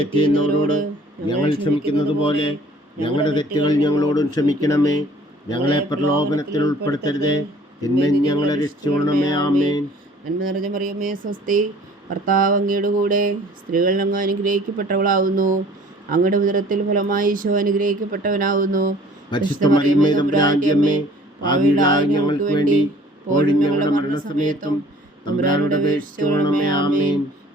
ചെയ്യുന്നവരോട് ഞങ്ങൾ ക്ഷമിക്കുന്നത് പോലെ ഞങ്ങളുടെ തെറ്റുകൾ ഞങ്ങളോടും ക്ഷമിക്കണമേ. ഞങ്ങളെ പ്രലോഭനത്തിൽ ഉൾപ്പെടുത്തരുതേ, തിന്മയിൽ ഞങ്ങളെ രക്ഷിച്ചുകൊള്ളണമേ. ആമേൻ. നന്മ നിറഞ്ഞ മറിയമേ സ്വസ്തി, കർത്താവ് അങ്ങയുടെ കൂടെ സ്ത്രീകൾ അങ്ങ് അനുഗ്രഹിക്കപ്പെട്ടവളാവുന്നു. അങ്ങയുടെ ഉദരത്തിൽ ഫലമായി ഈശോ അനുഗ്രഹിക്കപ്പെട്ടവനാവുന്നു. പരിശുദ്ധ മറിയമേ തമ്പുരാന്റെ അമ്മേ, പാപികളായ ഞങ്ങൾക്ക് വേണ്ടി ഇപ്പോഴും ഞങ്ങളുടെ മരണസമയത്തും തമ്പുരാനോട് അപേക്ഷിച്ചുകൊള്ളണമേ. ആമേൻ.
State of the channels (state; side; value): normal; both; correlation 0.52